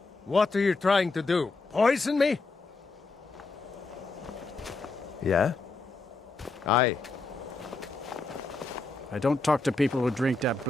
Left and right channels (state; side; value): quieter; right; 3.5 dB